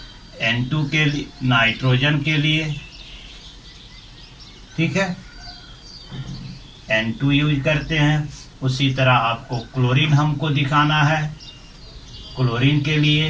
N2 के लिए, नाइट्रोजन के लिए, ठीक है, N2 यूज करते हैं। उसी तरह आपको क्लोरीन हमको दिखाना है, क्लोरीन के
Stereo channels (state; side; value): identical; both; correlation 1.00